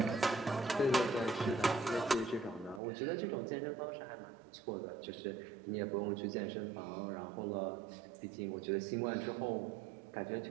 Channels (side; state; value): left; drops out; at 2.8 s